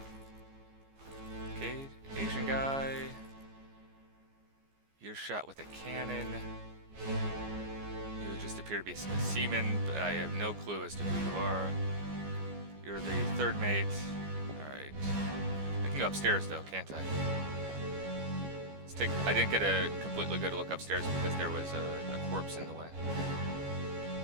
Okay, Asian guy. You're shot with a cannon. You just appear to be a seaman, but I have no clue as to who you are. You're the third mate. Alright. I can go upstairs though, can't I? I didn't get a completely good look upstairs because there was a corpse in the way.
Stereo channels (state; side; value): late; left; 14 ms